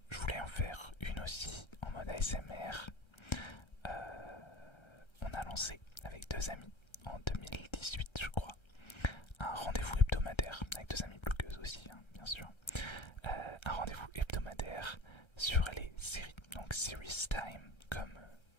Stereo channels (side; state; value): right; late; 1.3 ms